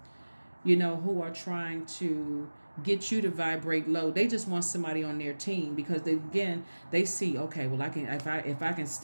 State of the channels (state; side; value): inverted; both; correlation -1.00